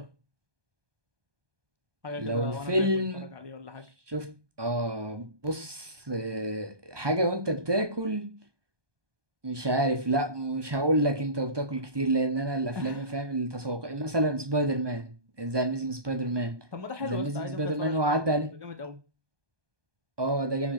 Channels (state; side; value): late; left; 1.2 ms